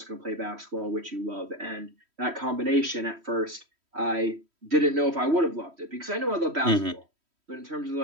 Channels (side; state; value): left; late; 3.1 ms